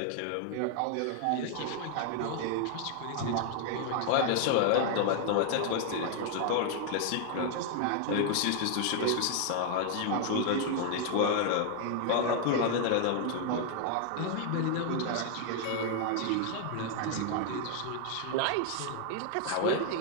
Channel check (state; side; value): different; both; correlation 0.00